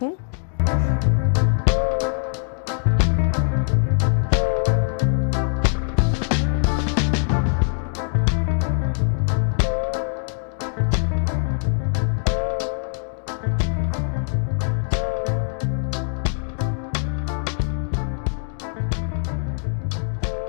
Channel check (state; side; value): silent; right; digital silence